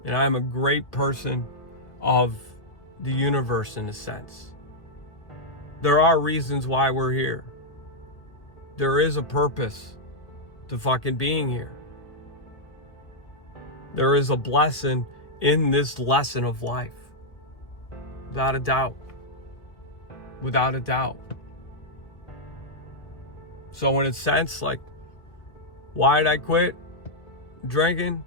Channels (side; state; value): right; late; 1.6 ms